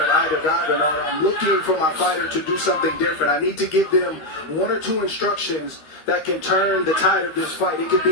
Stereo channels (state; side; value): late; right; 13 ms